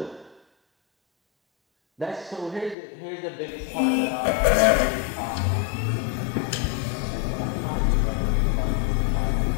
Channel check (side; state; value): right; drops out; at 2.8 s